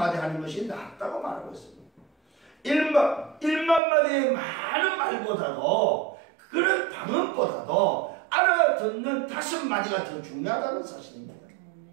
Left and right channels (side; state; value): left; drops out; at 3.8 s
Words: 하는 것이 낫다고 말하고 있습니다. 1만 마디의 많은 말보다도 그런 방언보다도 알아듣는 5마디가 더 중요하다는 사실입니다.